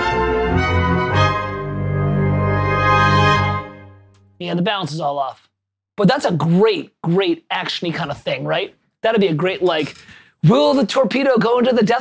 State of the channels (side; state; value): both; identical; correlation 1.00